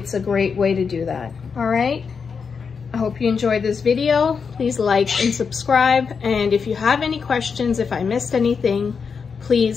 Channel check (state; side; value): quieter; right; 5.8 dB